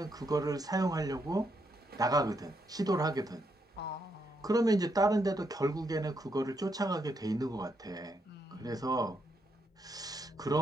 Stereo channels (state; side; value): normal; both; correlation 0.79